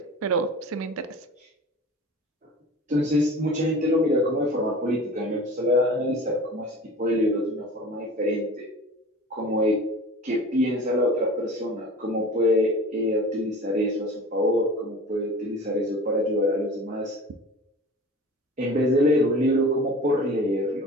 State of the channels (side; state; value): both; normal; correlation 0.40